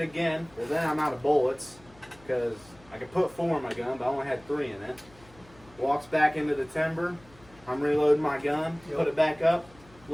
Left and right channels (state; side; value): noise; left; hum, 26 dB below the sound